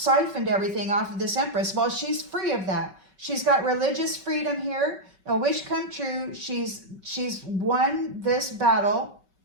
everything off of this empress. Well, she's free of that. She's got religious freedom here. A wish come true. She's won this battle.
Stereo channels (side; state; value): left; late; 5.2 ms